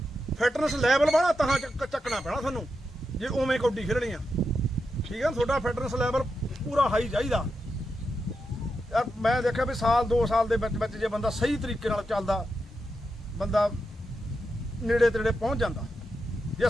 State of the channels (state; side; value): normal; both; correlation 0.87